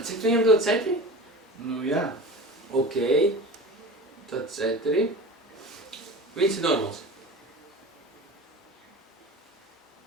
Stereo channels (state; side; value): normal; both; correlation 0.35